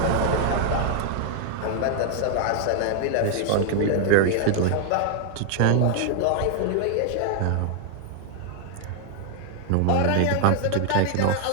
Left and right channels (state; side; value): different; both; correlation 0.00